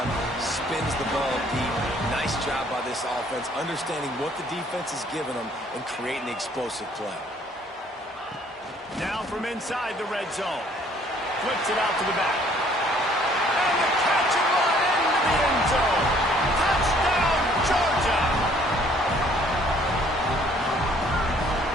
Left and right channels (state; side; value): normal; both; correlation 0.60